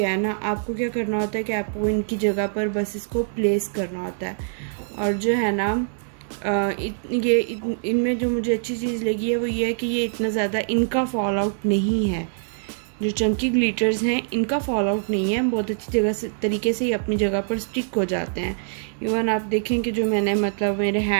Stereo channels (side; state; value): left; silent; 63 dB below the other